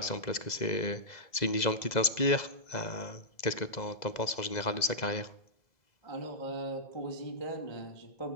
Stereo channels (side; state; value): right; late; 2.0 ms